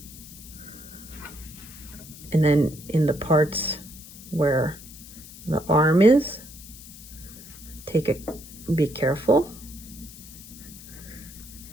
And then in the parts where the arm is, be careful.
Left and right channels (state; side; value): noise; left; hiss, 17 dB below the sound